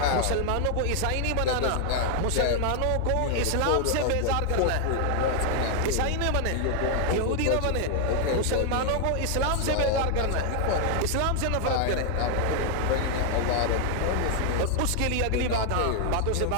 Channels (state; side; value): different; both; correlation 0.00